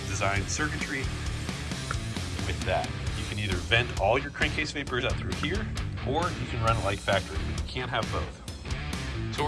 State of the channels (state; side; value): identical; both; correlation 1.00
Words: designed circuitry with that. You can either vent all your crankcase vapors out through here, or you can run it like factory, but you can't have both. So